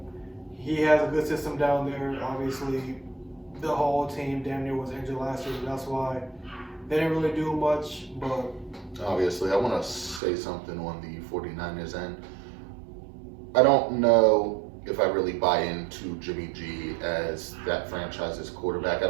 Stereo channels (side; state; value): left; drops out; at 10.2 s